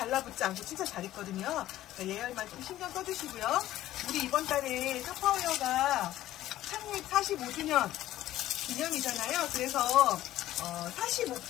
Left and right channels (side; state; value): right; quieter; 14.1 dB